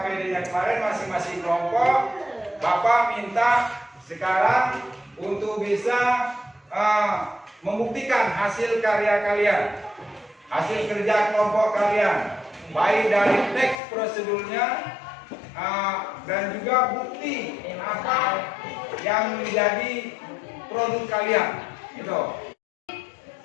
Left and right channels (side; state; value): right; drops out; at 13.8 s